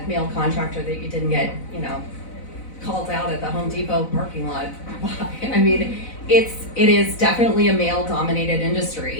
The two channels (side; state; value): right; late; 4.0 ms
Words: male contractor that you didn't get, called out at the Home Depot parking lot. I mean, it is definitely a male-dominated